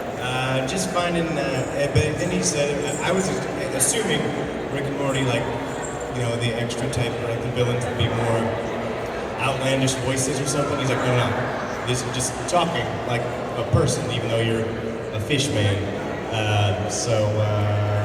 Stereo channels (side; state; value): both; identical; correlation 1.00